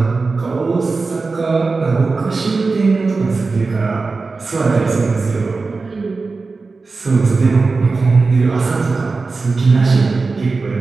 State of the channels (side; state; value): left; quieter; 4.0 dB